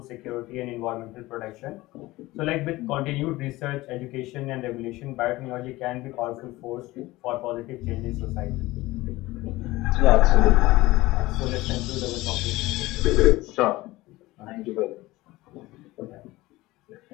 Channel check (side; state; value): right; quieter; 19.0 dB